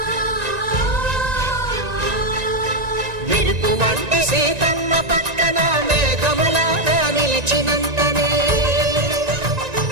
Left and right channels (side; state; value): left; late; 1.9 ms